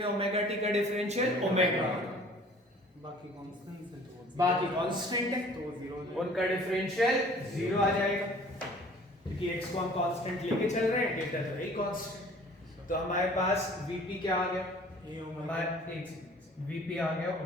ओमेगा t का डिफरेंशियल ओमेगा, बाकी कांस्टेंट है तो उनका डिफरेंशियल 0 आ जाएगा, क्योंकि x को हम कांस्टेंट लेके चल रहे हैं, डेल्टा तो वही कांस्टेंट। तो हमारे पास vp क्या आ गया? हमारे vp आ गया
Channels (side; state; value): both; normal; correlation 0.50